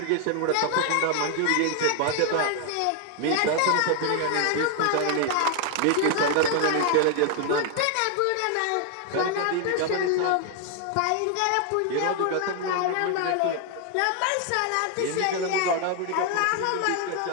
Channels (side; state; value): both; different; correlation 0.00